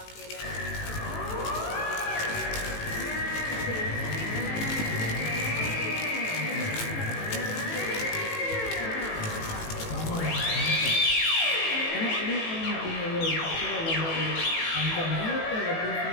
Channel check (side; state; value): right; late; 18 ms